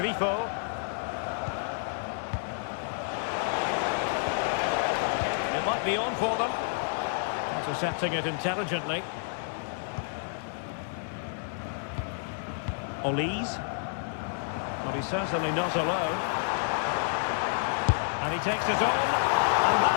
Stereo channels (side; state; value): right; silent; digital silence